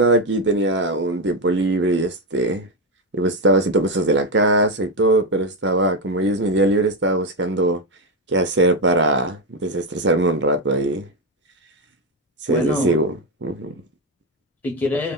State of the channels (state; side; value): normal; both; correlation 0.09